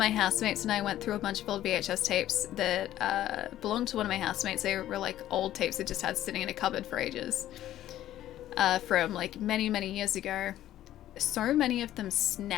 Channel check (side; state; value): right; quieter; 13.0 dB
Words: housemates and I went through a bunch of old VHS tapes that belonged to one of my housemates. They were like old tapes that just had sitting in a cupboard for ages. From like many, many years ago. So many of them